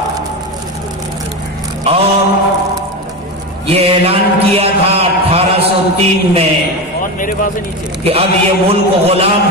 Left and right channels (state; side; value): normal; both; correlation 0.20